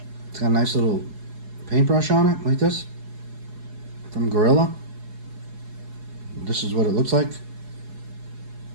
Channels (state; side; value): late; left; 4.8 ms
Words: It's got a nice little paintbrush on it, like this, from Gorilla. This is what it looks like.